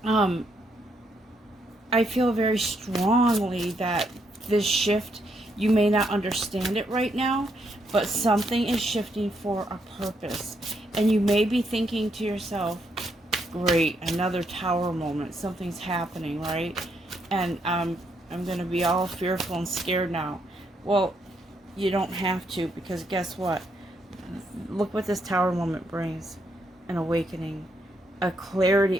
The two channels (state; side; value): normal; both; correlation 0.76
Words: I feel very strongly that this shift, you may not understand it right now, but something is shifting for a purpose. And you may be thinking to yourself, great, another tower moment, something's happening, right? And I'm going to be all fearful and scared now. Well, you don't have to, because guess what? Look what this tower moment brings. An awakening, a